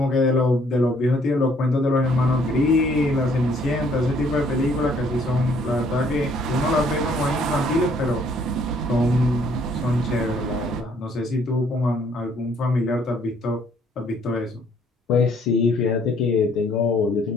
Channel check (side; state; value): both; normal; correlation 0.63